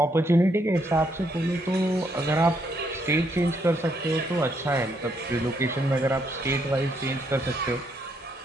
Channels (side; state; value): both; normal; correlation 0.74